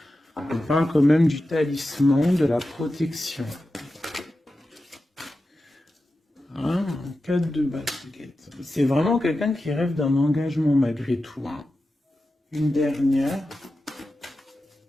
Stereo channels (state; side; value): normal; both; correlation 0.92